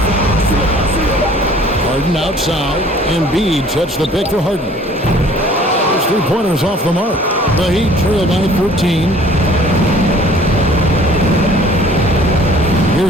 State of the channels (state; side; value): normal; both; correlation 0.53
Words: Harden outside. Embiid sets the pick for Harden. Those three-pointers off the mark. The Heat trail by 13.